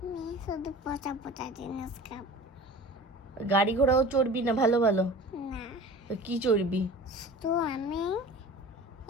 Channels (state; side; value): normal; both; correlation 0.39